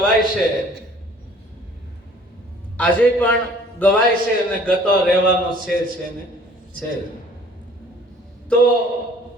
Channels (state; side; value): normal; both; correlation 0.54